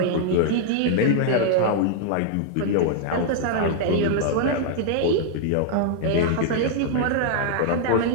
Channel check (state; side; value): different; both; correlation -0.01